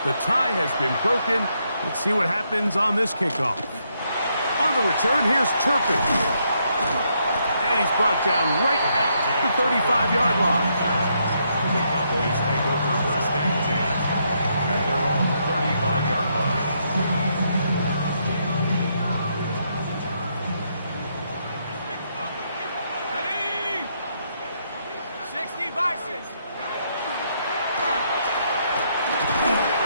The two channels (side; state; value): both; inverted; correlation -0.76